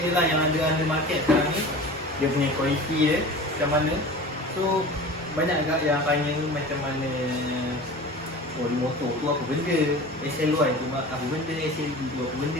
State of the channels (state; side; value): normal; both; correlation 0.37